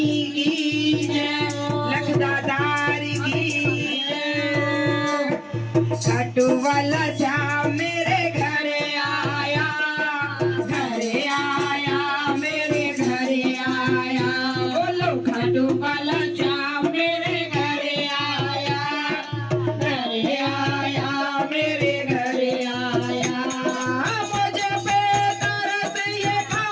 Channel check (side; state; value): both; identical; correlation 1.00